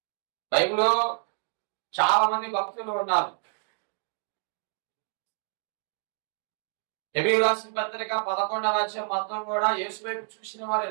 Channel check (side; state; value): left; silent; 59 dB below the other